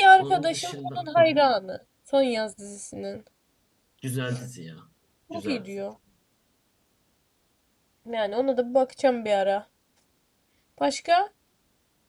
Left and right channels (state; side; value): identical; both; correlation 1.00